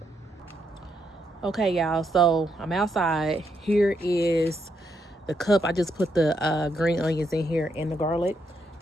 Okay, y'all, so I'm outside. Here is the cup. I just put the green onions in here and the garlic.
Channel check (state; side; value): normal; both; correlation 0.78